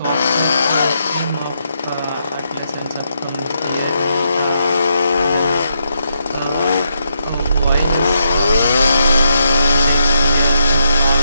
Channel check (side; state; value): both; inverted; correlation -0.79